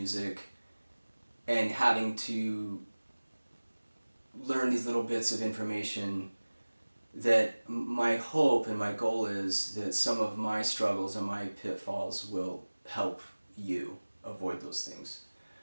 and having to learn these little bits of information. That my hope and my goal is that some of my struggles and my pitfalls will help you avoid those things.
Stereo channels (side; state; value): both; inverted; correlation -1.00